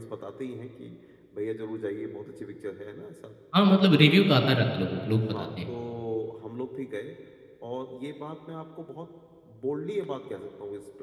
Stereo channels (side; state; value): both; identical; correlation 1.00